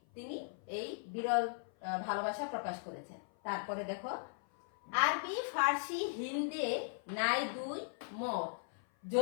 তিনি এই বিরল ভালোবাসা প্রকাশ করেছেন। তারপরে দেখো, আরবি ফার্সি হিন্দে নাই দুই মত,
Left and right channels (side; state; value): right; silent; 52 dB below the other